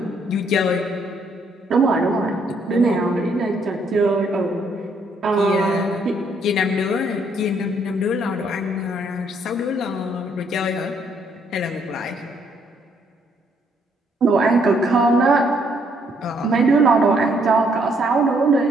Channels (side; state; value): both; normal; correlation 0.69